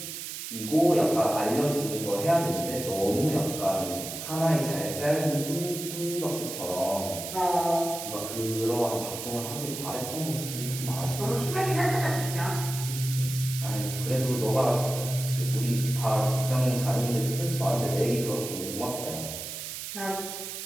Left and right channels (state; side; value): noise; right; hiss, 7 dB below the sound